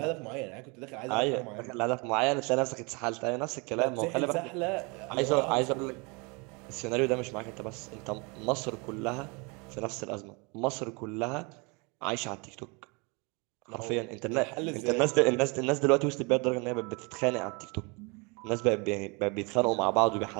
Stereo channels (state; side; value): quieter; left; 30.1 dB